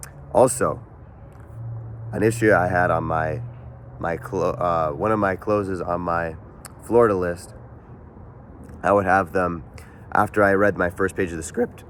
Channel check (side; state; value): both; identical; correlation 1.00